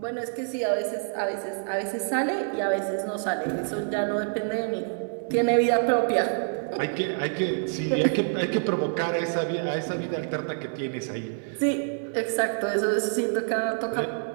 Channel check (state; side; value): silent; left; digital silence